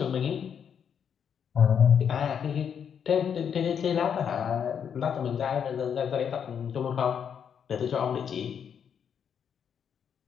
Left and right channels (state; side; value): quieter; right; 7.8 dB